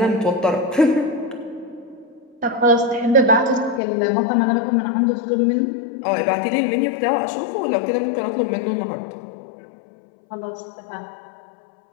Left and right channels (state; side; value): drops out; right; at 3.8 s